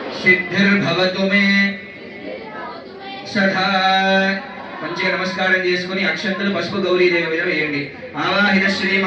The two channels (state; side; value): identical; both; correlation 1.00